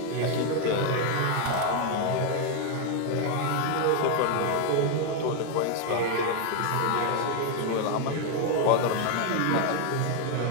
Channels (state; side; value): different; both; correlation 0.01